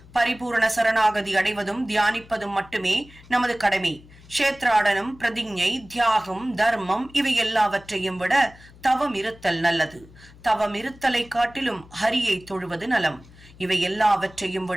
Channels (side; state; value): left; noise; hum, 23 dB below the sound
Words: பரிபூரண சரணாகதி அடைவதும் தியானிப்பதும் மட்டுமே நமது கடமை. க்ஷேத்ராடனம், பிரதிஞ்ஞை, தியாகம், தர்மம் இவை எல்லாவற்றையும் விட தவம் இருத்தல் நல்லது. தவம் இருத்தலை காட்டிலும் ஹரியை தொழுவது நலம். இவை எல்லாவற்றையும்